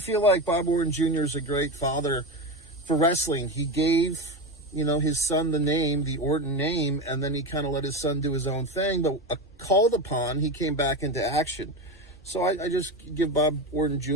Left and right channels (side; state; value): both; normal; correlation 0.19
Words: like Bob Orton Jr. is a great father for wrestling. He gave, his son the name, the Orton name, and then he kind of let his son do his own thing, but called upon, he came back into action. So I just give Bob Orton